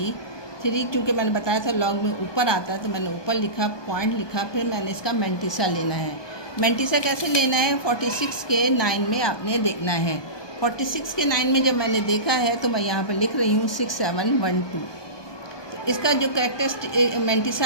क्योंकि मैंने बताया था लॉग में ऊपर आता है तो मैंने ऊपर लिखा, पॉइंट लिखा, फिर मैंने इसका मैंटिसा लेना है। मैंटिसा कैसे लेना है, 46 के 9 में आपने देखना है। 46 के 9 में जब मैंने देखा है तो मैं यहाँ पर लिख रही हूँ 6712। तो इसका जो कैरेक्टरिस्टिक मैंटिसा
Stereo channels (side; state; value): right; late; 1.2 ms